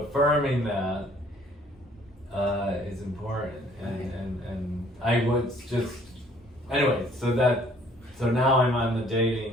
that is important, and I would just anyway. So now I'm on the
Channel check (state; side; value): normal; both; correlation 0.58